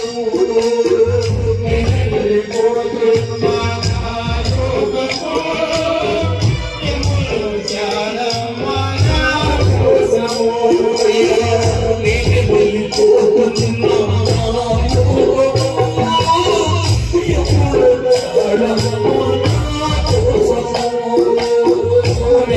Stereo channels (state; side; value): identical; both; correlation 1.00